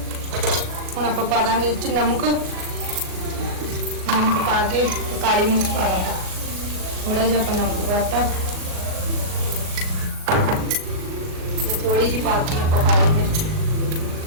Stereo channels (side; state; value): left; late; 38 ms